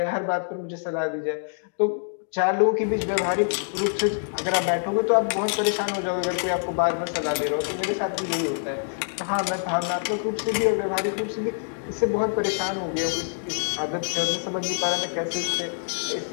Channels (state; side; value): silent; right; digital silence